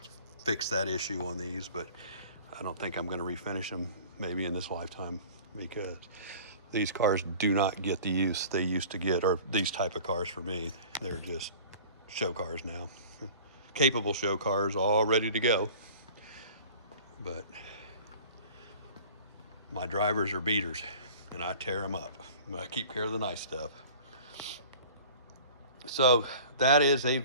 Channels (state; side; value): inverted; both; correlation -0.44